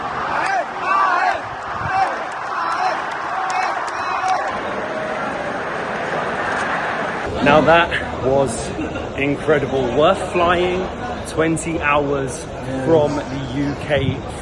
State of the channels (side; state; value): both; identical; correlation 1.00